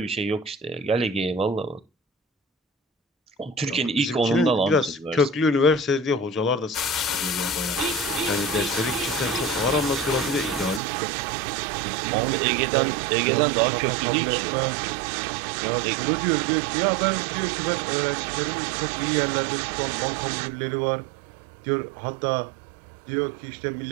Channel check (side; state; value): left; drops out; at 10.8 s